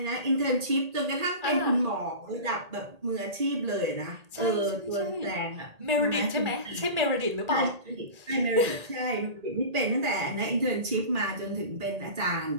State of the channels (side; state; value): left; late; 1.8 ms